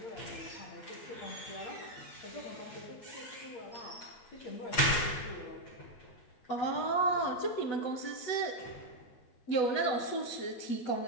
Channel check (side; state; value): right; late; 8.4 ms